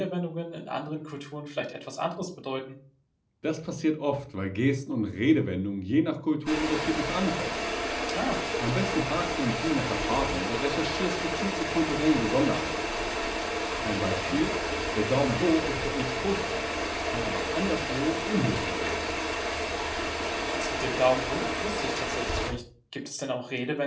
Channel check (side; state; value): both; identical; correlation 1.00